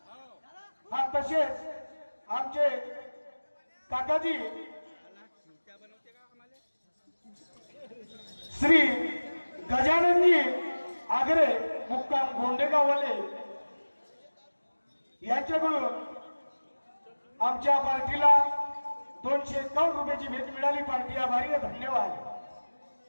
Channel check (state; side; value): inverted; both; correlation -1.00